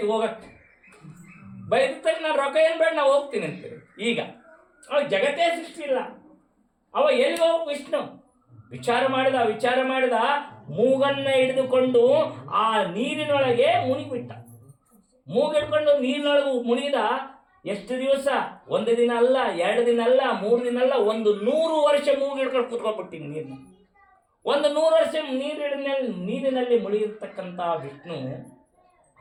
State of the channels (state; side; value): identical; both; correlation 1.00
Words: ಹೋಗಕ್ಕೆ ಬೈದಕ್ಕೆ ನಾನು ರೊಕ್ಕ ಏನು ಬೇಡ ನಾವು ಹೋಗ್ತೀನಿ ಅಂತೀರಿ. ಈಗ ಅವ ಜಗತ್ತೇ ಸೃಷ್ಟಿ ಇಲ್ಲ, ಅವ ಎಲ್ಲಿ ಹೋಗ್ಬೇಕು? ವಿಷ್ಣು ವಿಚಾರ ಮಾಡಿದ ಮೂಗನ್ನ ಹಿಡಿದುಕೊಂಡು ಆ ನೀರಿನೊಳಗೆ ಮುಳುಗಿಬಿಟ್ಟ. ಮೂಗಿಡ್ಕೊಂಡು ನೀರಿನೊಳಗೆ ಮುಳುಗಿದ. ಎಷ್ಟು ದಿವಸ? 1 ದಿನ ಅಲ್ಲ, 2 ದಿನ ಅಲ್ಲ, 3 ದಿನ ಅಲ್ಲ, 100 ವರ್ಷ ಮೂಗಿಡ್ಕೊಂಡು ಕೂತ್ಕೊಂಡ್ಬಿಟ್ಟಿನಿ ನೀರಿನ. 100 ವರ್ಷ ನೀರಿನಲ್ಲಿ ಮುಳುಗಿರ್ತಕ್ಕಂಥ ವಿಷ್ಣು